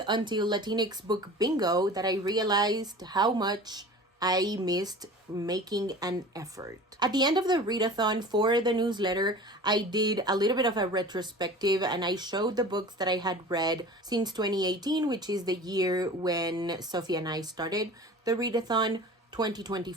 until Latinx Book Bingo that I realized how much I missed making an effort. At the end of the readathon for the newsletter, I did a little bit of a retrospective and I showed the books that I had read since 2018, which is the year when Sophie and I started the readathon.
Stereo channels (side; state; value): both; normal; correlation 0.39